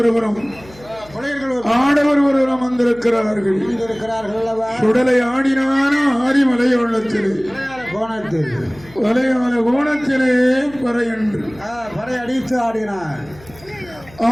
ஆடவர் ஒருவரும் வந்திருக்கிறார்கள். சுடலை ஆடினான ஆரி மலையாளத்திலே வலையாள கோணத்திலே பறை அடித்து ஆடினான்.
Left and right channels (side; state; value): left; noise; hum, 23 dB below the sound